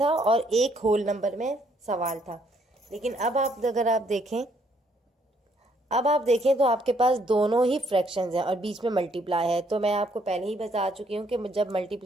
और एक होल नंबर में सवाल था, लेकिन अब अगर आप देखें तो आपके पास दोनों ही फ्रैक्शंस हैं और बीच में मल्टीप्लाई है। तो मैं आपको पहले ही बता चुकी हूँ कि जब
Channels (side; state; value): both; normal; correlation 0.68